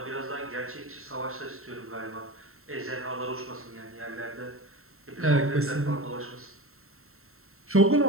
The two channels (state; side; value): late; left; 0.62 ms